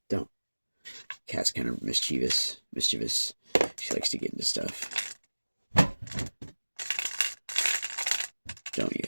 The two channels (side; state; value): both; inverted; correlation -1.00